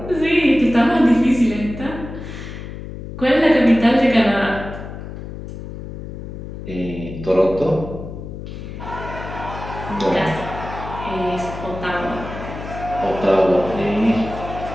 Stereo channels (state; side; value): noise; left; hum, 10 dB below the sound